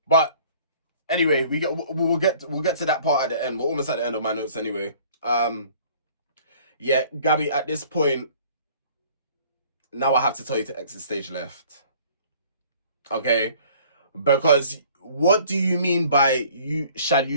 But anyway, we'll get to that part at the end. We're almost at the end of my notes anyway. Yeah, Gabby, at this point, now I have to tell you to exit stage left. Okay? Because what do you mean by shall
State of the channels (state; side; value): inverted; both; correlation -0.53